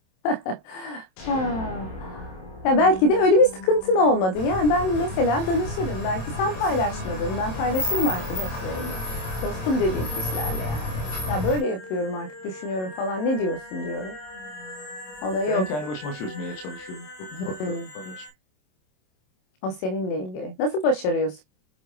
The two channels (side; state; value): right; late; 27 ms